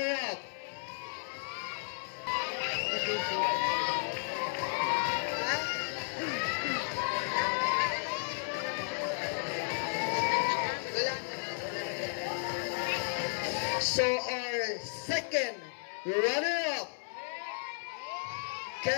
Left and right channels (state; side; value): silent; right; 55 dB below the other